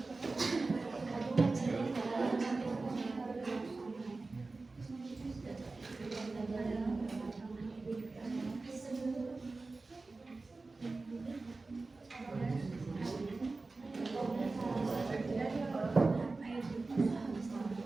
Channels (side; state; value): left; quieter; 3.6 dB